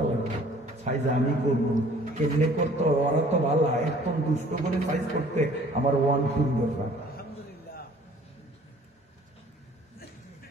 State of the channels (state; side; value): normal; both; correlation 0.54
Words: লাগবে। সাইজ আমি করবো, কেমনে করতো ওরা তো ভালো, একদম দুষ্ট করে সাইজ করতে আমার 1-2 ব্যাপার।